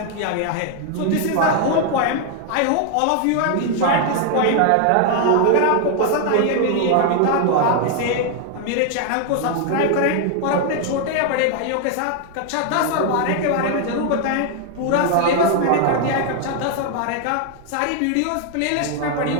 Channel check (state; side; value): different; both; correlation 0.00